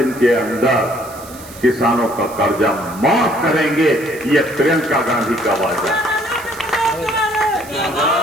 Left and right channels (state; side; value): noise; right; hiss, 18 dB below the sound